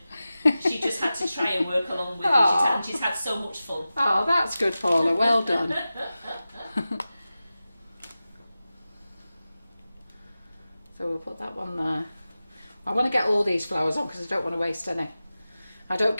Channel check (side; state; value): both; inverted; correlation -0.94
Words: She just had to try and work along with Aw. you. She's had so much fun. Oh, that's good, Paula. Well done. So we'll put that one there. I want to get all these flowers on because I don't want to waste any. I don't